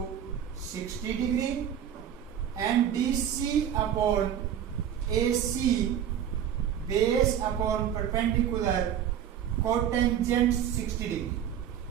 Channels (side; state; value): left; quieter; 9.5 dB